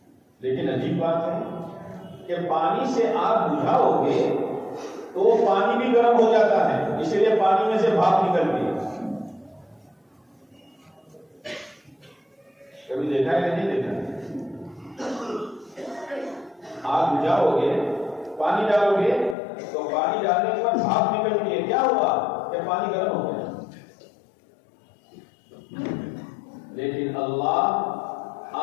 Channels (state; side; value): drops out; right; at 19.4 s